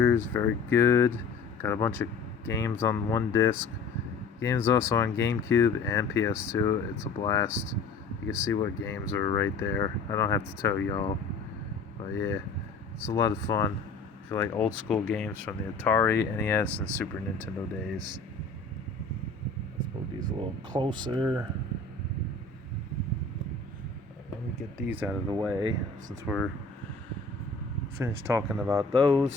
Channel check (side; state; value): right; quieter; 4.2 dB